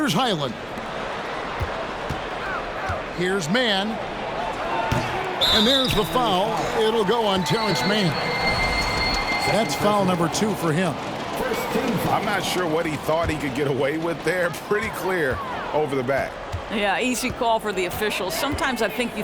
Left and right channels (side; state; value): both; identical; correlation 1.00